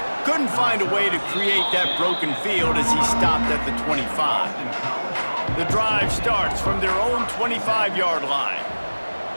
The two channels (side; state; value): both; inverted; correlation -1.00